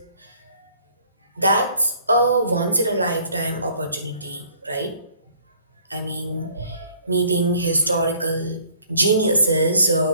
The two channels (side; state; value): both; inverted; correlation -0.58